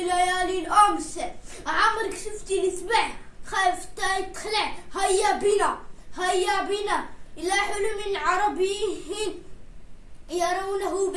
الأمس. عمرك شفتي السبع خايف تخلع. هيا بنا إلى حلم عربي يرونه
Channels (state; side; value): identical; both; correlation 1.00